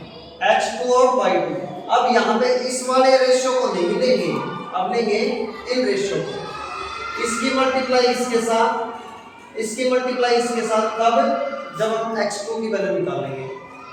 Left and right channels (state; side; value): identical; both; correlation 1.00